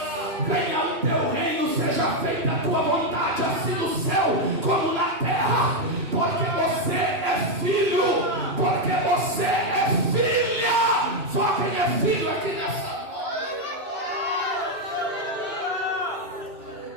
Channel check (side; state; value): left; late; 3.0 ms